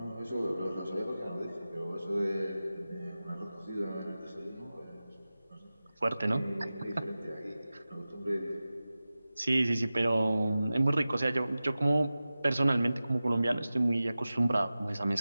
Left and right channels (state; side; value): inverted; both; correlation -0.95